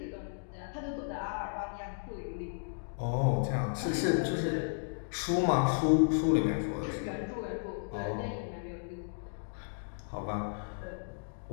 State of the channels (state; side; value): silent; right; digital silence